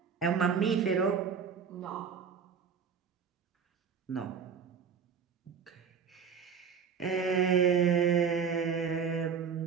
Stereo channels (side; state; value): left; quieter; 6.4 dB